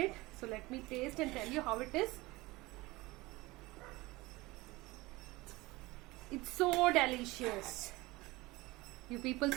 So let me taste and tell you how it is. It's so delicious. You people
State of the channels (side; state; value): left; quieter; 21.3 dB